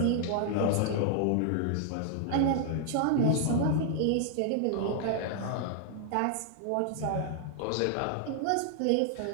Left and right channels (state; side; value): different; both; correlation 0.00